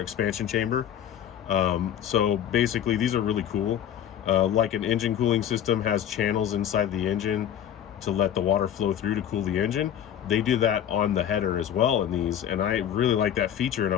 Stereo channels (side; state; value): right; quieter; 9.9 dB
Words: chamber. So basically these are really cool. Like an engine cooling system has channels inside the engine to let the water flow through to cool the engine. They do that on the header as well in these, and I really like that feature and I